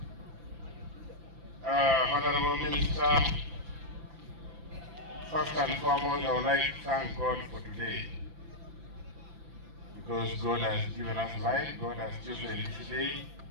Honorable Minister, first and foremost, I would like to thank God for today, because God has given us life. God has chosen this day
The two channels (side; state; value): left; late; 5.9 ms